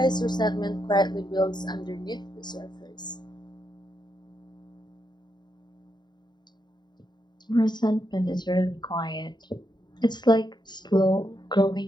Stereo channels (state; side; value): late; right; 0.21 ms